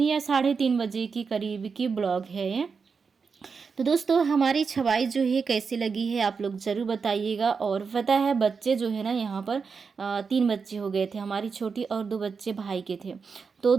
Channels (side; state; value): left; quieter; 5.4 dB